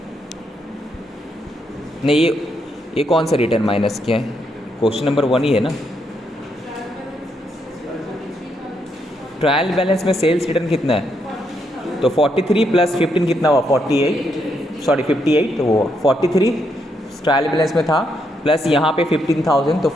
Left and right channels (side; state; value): both; normal; correlation 0.78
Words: नहीं ये कौन सा रिटर्न माइनस किया है, क्वेश्चन नंबर 1 ही है ना। ट्रायल बैलेंस में सेल्स रिटर्न कितना है, तो 43 प्लस 15 कितना हुआ 58, तो वो 43 ट्रायल बैलेंस में था, प्लस यहाँ पे 15,000, तो